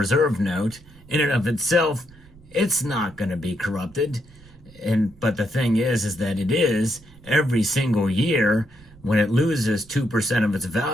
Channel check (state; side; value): noise; right; rumble, 24 dB below the sound